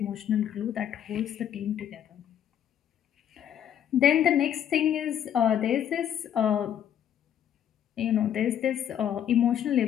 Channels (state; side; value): quieter; right; 9.8 dB